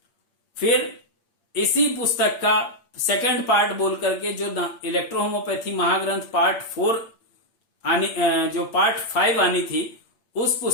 फिर इसी पुस्तक का सेकंड पार्ट बोल करके जो इलेक्ट्रो होम्योपैथी महाग्रंथ पार्ट 4 जो पार्ट 5 आनी थी, उस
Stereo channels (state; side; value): late; right; 8.7 ms